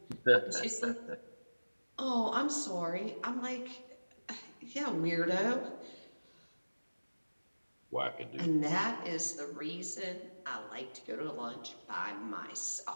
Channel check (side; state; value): both; inverted; correlation -1.00